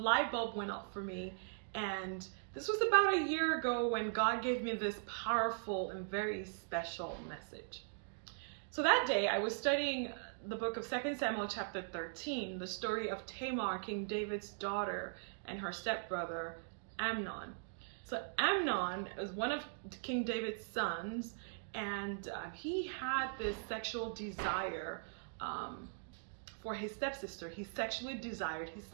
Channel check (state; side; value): silent; left; digital silence